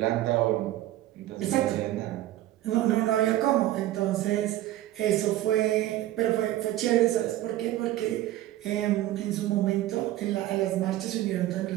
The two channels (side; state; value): left; quieter; 14.5 dB